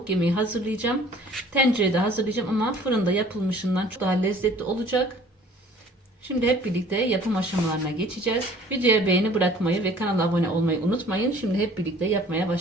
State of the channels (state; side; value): normal; both; correlation 0.52